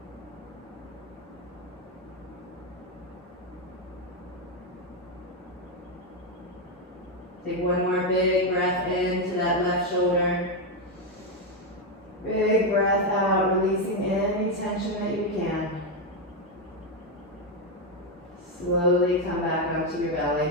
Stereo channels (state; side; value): normal; both; correlation 0.05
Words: Take one more big breath into that left shoulder. Big breath out, releasing any tension that you can. Slowly come back onto your belly.